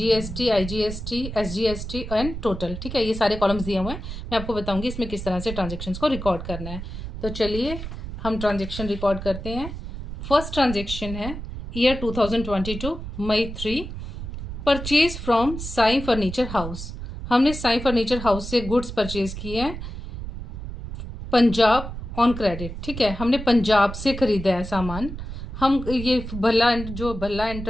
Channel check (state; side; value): noise; right; rumble, 8 dB below the sound